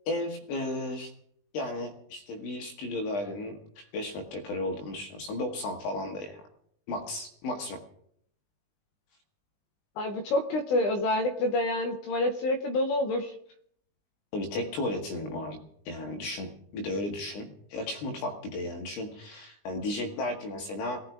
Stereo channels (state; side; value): late; right; 20 ms